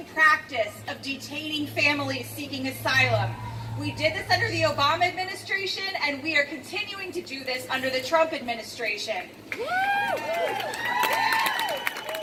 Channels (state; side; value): identical; both; correlation 1.00